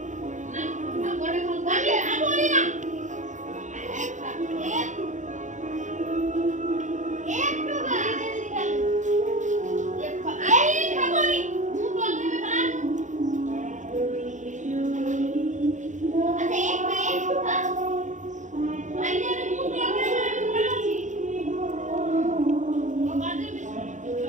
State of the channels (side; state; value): left; late; 0.35 ms